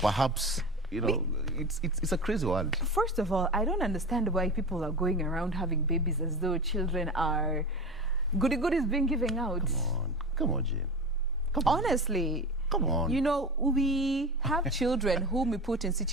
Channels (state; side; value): normal; both; correlation 0.28